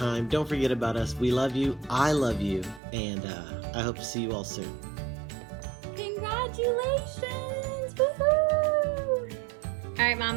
Don't forget about us. We love you. I love you, and I hope to see you all soon. Congratulations! Woohoo! All right,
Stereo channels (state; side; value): drops out; left; at 2.8 s